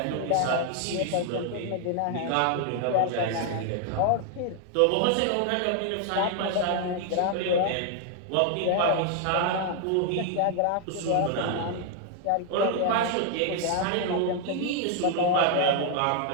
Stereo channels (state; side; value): different; both; correlation 0.00